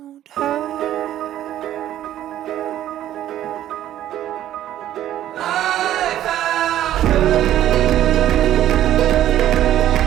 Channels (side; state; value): left; quieter; 12.3 dB